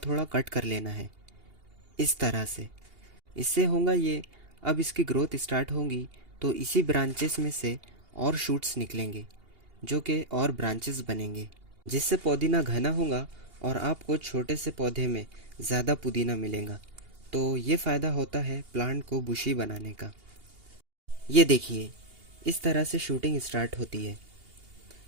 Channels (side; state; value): left; late; 2.8 ms